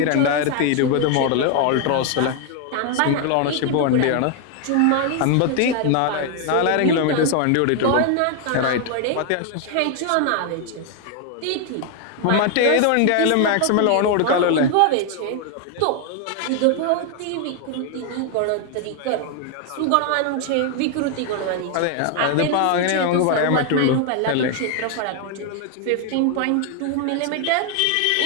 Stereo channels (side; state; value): both; different; correlation 0.01